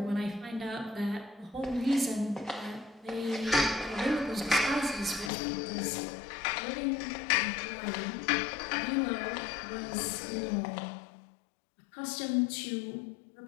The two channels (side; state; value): right; drops out; at 5.3 s